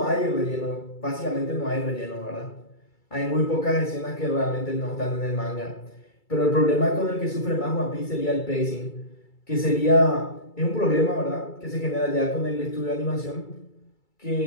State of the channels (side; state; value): right; late; 2.3 ms